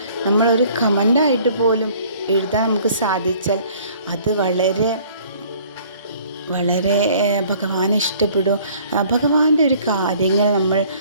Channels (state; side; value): inverted; both; correlation -0.55